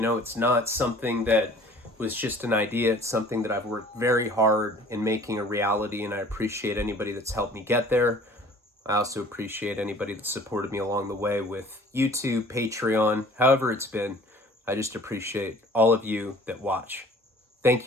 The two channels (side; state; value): both; normal; correlation 0.50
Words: it's not something that was just an idea. It's something that I've worked very hard in making a reality, and I appreciate anybody that's helped me get there. I also appreciate anybody that supported me along the way with YouTube, Patreon, however it's been. I just appreciate all of you that watch. Thank